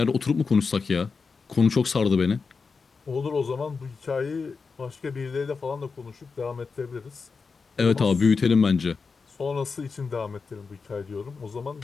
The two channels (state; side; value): quieter; right; 4.9 dB